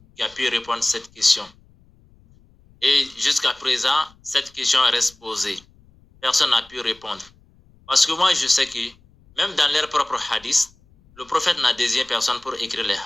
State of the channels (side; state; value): left; noise; rumble, 29 dB below the sound